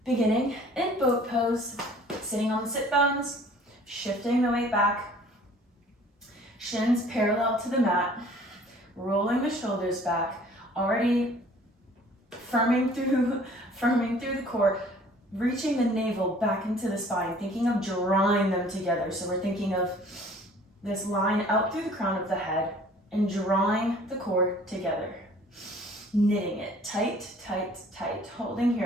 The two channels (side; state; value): both; normal; correlation 0.52